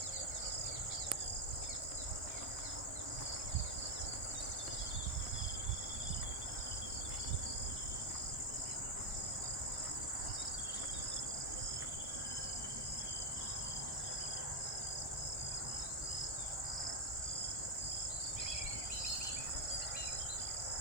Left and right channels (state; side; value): normal; both; correlation 0.06